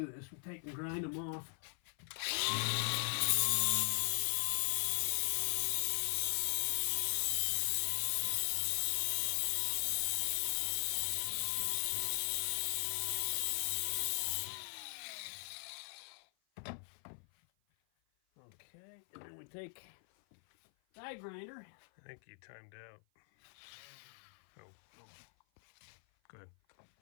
this. We take and grind them off. Okay, and then we take die grinder. I think you timed out. Oh. Go ahead.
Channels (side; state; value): right; silent; 52 dB below the other